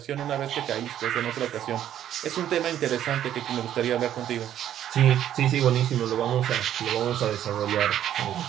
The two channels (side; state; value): left; quieter; 11.0 dB